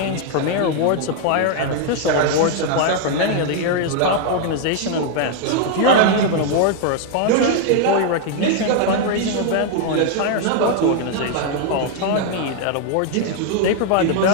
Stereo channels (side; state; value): both; different; correlation 0.00